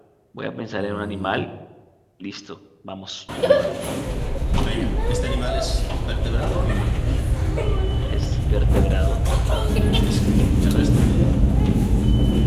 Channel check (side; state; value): both; identical; correlation 1.00